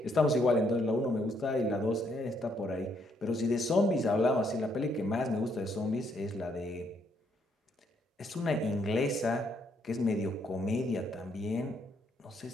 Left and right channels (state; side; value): normal; both; correlation 0.72